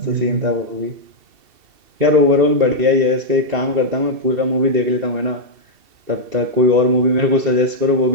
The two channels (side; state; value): left; late; 2.7 ms